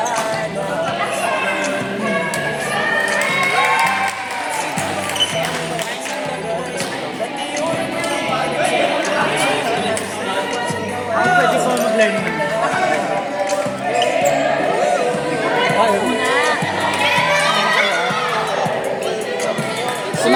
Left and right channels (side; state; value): both; identical; correlation 1.00